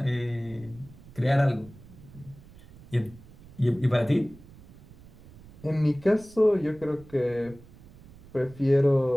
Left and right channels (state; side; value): noise; right; rumble, 21 dB below the sound